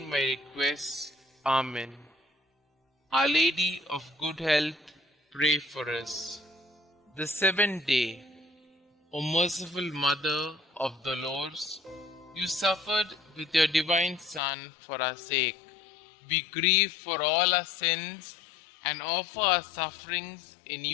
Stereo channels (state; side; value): drops out; right; at 14.4 s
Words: my requests. Amen. Our Lady of Good Health, pray for us. The seventh day. O merciful Mother of the Lords, you suffered with your divine Son for our sake. We grieve for all our sins and offer our sufferings in